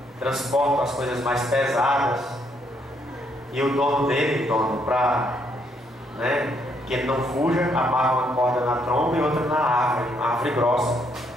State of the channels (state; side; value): normal; both; correlation 0.72